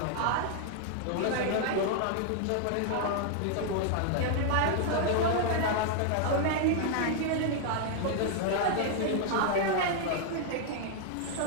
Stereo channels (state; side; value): different; both; correlation 0.00